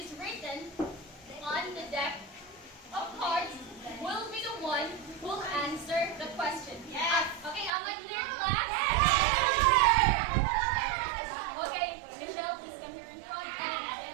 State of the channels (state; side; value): drops out; left; at 7.7 s